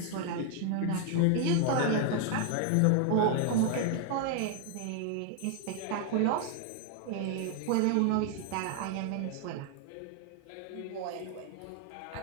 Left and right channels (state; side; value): different; both; correlation 0.00